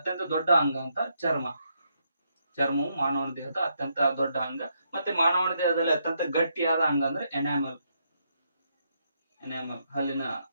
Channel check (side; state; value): both; inverted; correlation -0.78